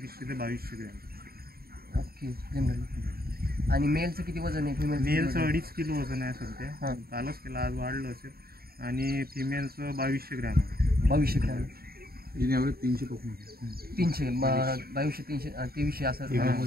ते 2200 ग्रॅम. ओके. जनरली. आणि मेलचं किती वजन आहे? मेलचं 2.5 किलो वजन आहे सध्या. कालच केलं, आज वाढलं असेल. आणि फिमेलचं 2200 ग्रॅम आहे. 2200 ग्रॅम. 300 300 2200 300 2300 असं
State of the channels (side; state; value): left; late; 0.44 ms